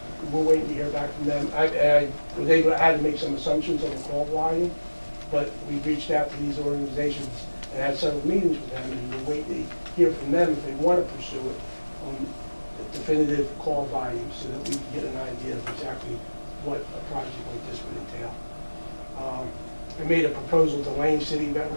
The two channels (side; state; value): both; inverted; correlation -1.00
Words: We're waiting to hear back from them. I had to make some assumptions on the call volume, but we reached out to these organizations and had several meetings with them, and we're waiting to hear from them if they want to pursue it on the definitive call volume so that we can get an idea of exactly what a project like this would entail. I made a proposal to Lane City,